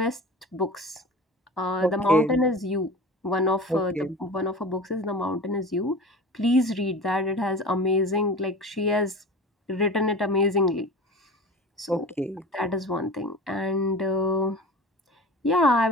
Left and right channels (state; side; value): normal; both; correlation 0.35